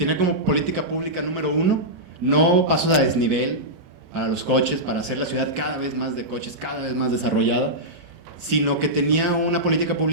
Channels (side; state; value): left; late; 37 ms